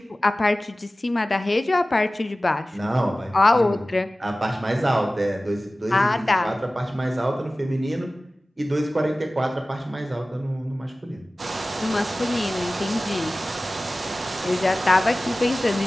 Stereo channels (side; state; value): both; normal; correlation 0.97